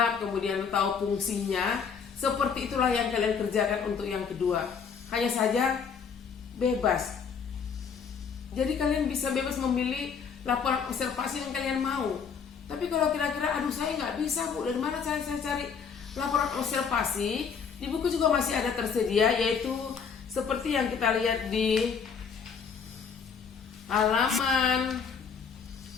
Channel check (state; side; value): quieter; right; 6.3 dB